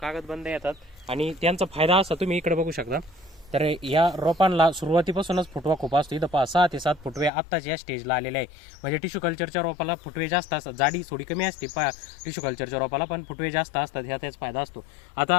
कागदबंद येतात आणि त्यांचा फायदा असा तुम्ही इकडे बघू शकता। तर या रोपांना सुरुवातीपासूनच फुटवा खूप असतो। इथं 6 ते 7 फुटवे आत्ताच या स्टेजला आलेले आहे। म्हणजे टिश्यू कल्चरच्या रोपाला फुटवे जास्त असतात, जाडी थोडी कमी असते टिश्यू कल्चरच्या रोपाला, पण फुटवे जास्त असतात, ह्या त्याच फायदा असतो। आता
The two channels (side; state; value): right; drops out; at 7.3 s